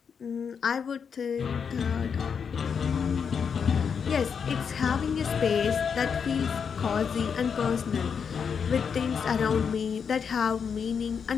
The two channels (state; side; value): quieter; right; 6.6 dB